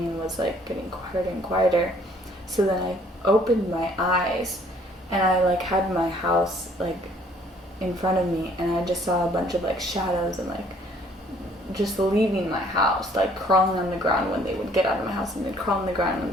was, like, getting quieter and quieter. So then I opened my eyes, and I, like, had my house, like, in front of me, and I just saw a bunch of, like, shadows and, like, just leaving my house, like, crawling on the ground when they would get out of my house, and they'd crawl on the ground when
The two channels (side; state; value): both; normal; correlation 0.60